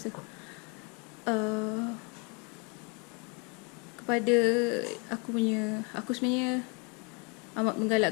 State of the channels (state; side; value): quieter; right; 32.8 dB